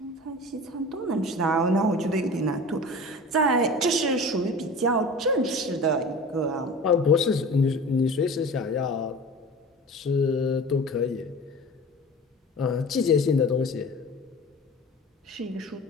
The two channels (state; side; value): normal; both; correlation 0.37